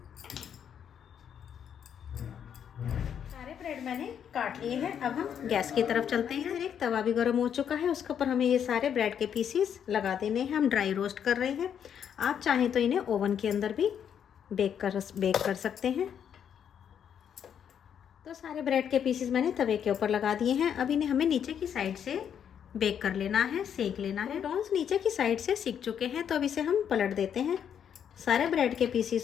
सारे ब्रेड मैंने काट लिए हैं। अब हम गैस की तरफ चलते हैं। एक तवा भी गर्म हो चुका है, उसके ऊपर हमें ये सारे ब्रेड के पीसीस लगा देने हैं। हम ड्राई रोस्ट कर रहे हैं। आप चाहें तो इन्हें ओवन के अंदर भी बेक कर सकते हैं। तो सारे ब्रेड के पीसेस मैंने तवे के ऊपर लगा दिए हैं। अब इन्हें हमें नीचे की साइड से बेक कर लेना है, सेक लेना है। टॉन्स नीचे की साइड से सिक चुके हैं, तो अब इसे हम पलट देते हैं। सारे ब्रेड के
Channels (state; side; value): quieter; right; 8.5 dB